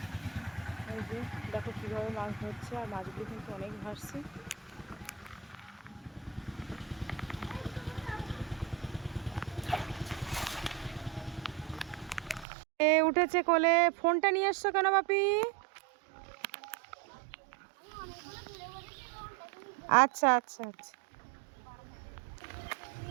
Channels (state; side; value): drops out; left; at 12.5 s